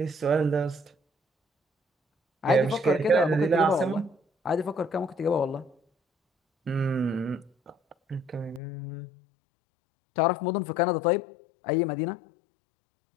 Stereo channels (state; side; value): drops out; right; at 8.6 s